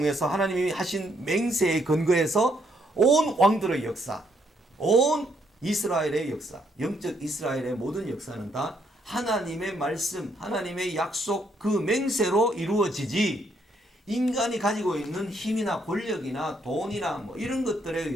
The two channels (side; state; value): both; normal; correlation 0.73